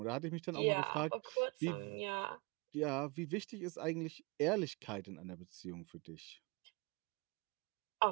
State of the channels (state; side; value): quieter; left; 28.8 dB